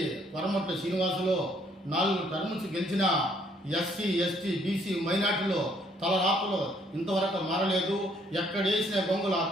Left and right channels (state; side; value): normal; both; correlation 0.66